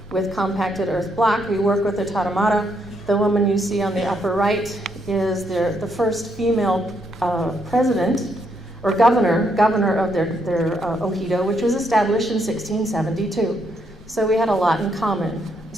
with compacted earth block. We work with the Tarahumara. The woman you see on the upper right is the first female president or governor of their Ojido, which was established in 1672. So we had a lot in common.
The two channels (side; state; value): both; normal; correlation 0.75